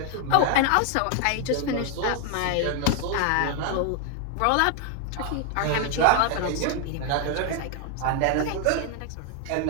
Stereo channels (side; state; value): both; different; correlation 0.00